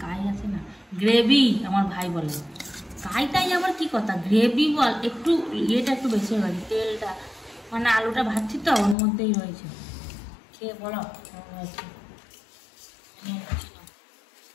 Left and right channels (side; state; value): right; drops out; at 9.0 s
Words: কাই আছে না, গ্রেভি আমার ভাই বলে। কাইটাই আবার কি কথা, গ্রেভি বল। একটু ইয়েটা একটু বেশি হয়েছে, তেলটা মানে আলুটা ভাজছি তো ওর মধ্যেই রয়েছে। খেয়ে বলো কেমন হয়েছে।